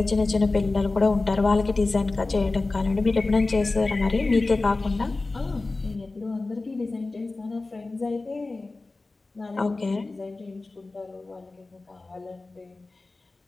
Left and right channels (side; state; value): right; quieter; 3.4 dB